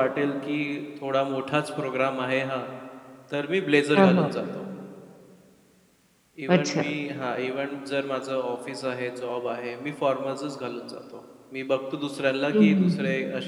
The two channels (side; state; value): both; identical; correlation 1.00